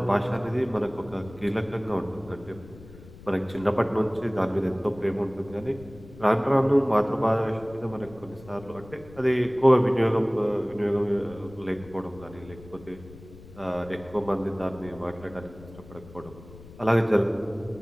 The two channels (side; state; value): left; noise; rumble, 19 dB below the sound